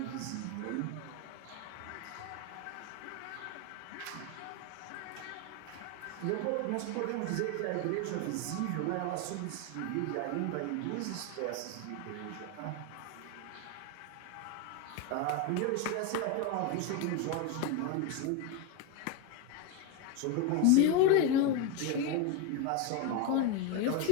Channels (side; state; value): both; different; correlation 0.02